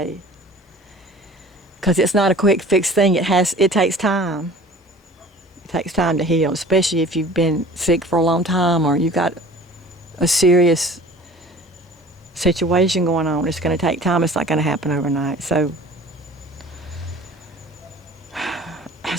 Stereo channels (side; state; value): both; normal; correlation 0.45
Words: because it's not a quick fix thing. It takes time. It takes time to heal, especially if you've been sick for a long time or you've got a serious situation going on. It's going to take time. It's not going to happen overnight. So